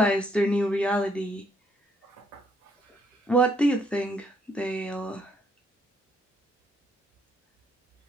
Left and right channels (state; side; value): normal; both; correlation 0.70